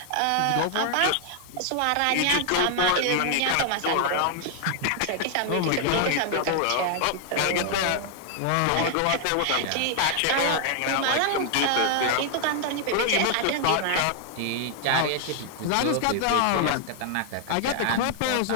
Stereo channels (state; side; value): different; both; correlation 0.00